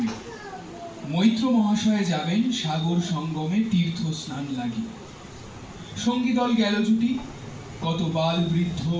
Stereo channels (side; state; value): both; identical; correlation 1.00